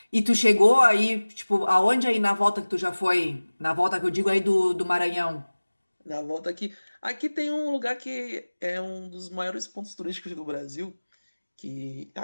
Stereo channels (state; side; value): inverted; both; correlation -1.00